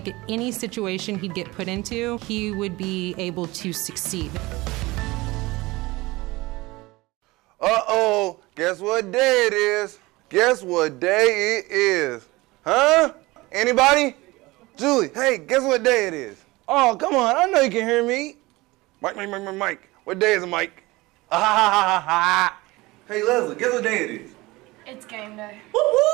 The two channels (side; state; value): left; quieter; 21.1 dB